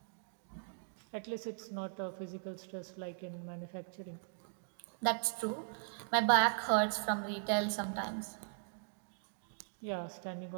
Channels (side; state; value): left; silent; digital silence